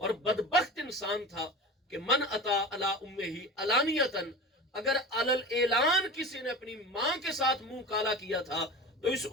بدبخت انسان تھا کہ من اتا علی امہ علانیتاً، اگر علل اعلان کسی نے اپنی ماں کے ساتھ منہ کالا کیا تھا، تو اس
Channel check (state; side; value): normal; both; correlation 0.32